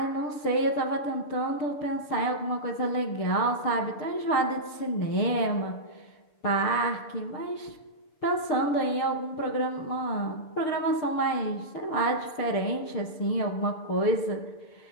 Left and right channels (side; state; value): right; late; 6.8 ms